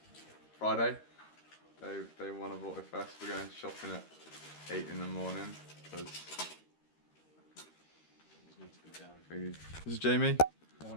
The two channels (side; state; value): right; late; 13 ms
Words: Friday, day one of AutoFest. We're going shopping at 8 in the morning because this is Jamie.